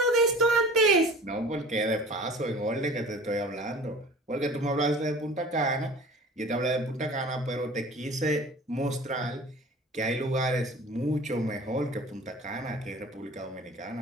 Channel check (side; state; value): both; normal; correlation 0.43